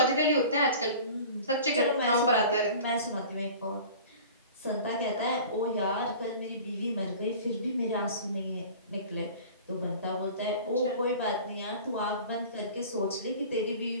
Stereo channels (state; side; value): inverted; both; correlation -0.41